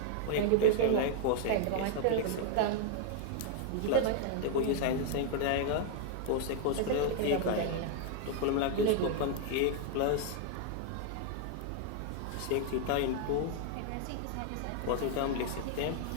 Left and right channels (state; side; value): different; both; correlation 0.00